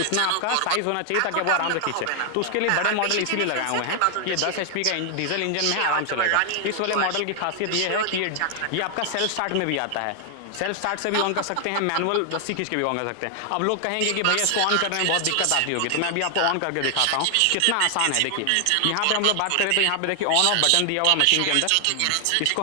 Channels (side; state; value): both; different; correlation 0.00